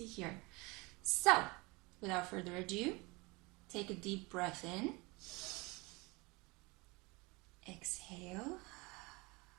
here. So, without further ado, take a deep breath in. Exhale.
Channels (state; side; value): quieter; left; 25.5 dB